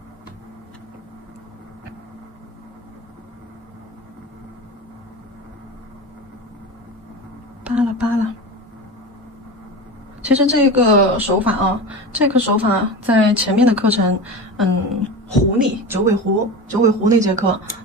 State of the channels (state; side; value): normal; both; correlation 0.27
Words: 扒拉。其实这个手法在前面的课程，狐狸九尾狐那节课，